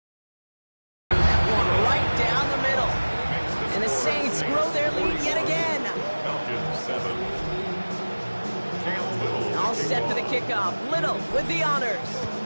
That one right down the middle. And the Saints grow their lead yet again. Falcons 7. All set for the kickoff. Little with the honors.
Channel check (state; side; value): inverted; both; correlation -1.00